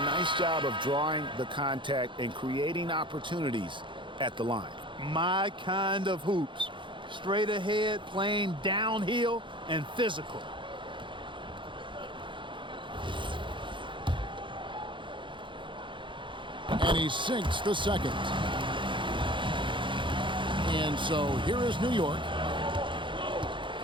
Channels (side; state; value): left; late; 0.24 ms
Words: nice job of drawing the contact and creating opportunities at the line. My kind of hoops. Straight ahead, playing downhill, and physical. And he sinks the second. And so here is New York.